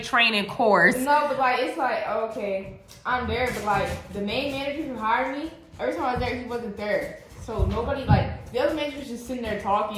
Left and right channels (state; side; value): identical; both; correlation 1.00